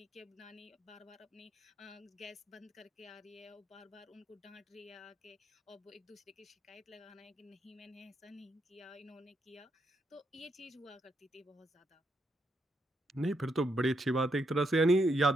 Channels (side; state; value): both; normal; correlation 0.79